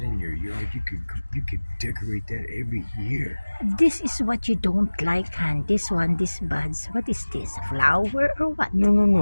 in your yard, you could decorate that every year. This is what you don't like, Han. This buds. What is this? Flower or what? No.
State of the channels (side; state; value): both; inverted; correlation -1.00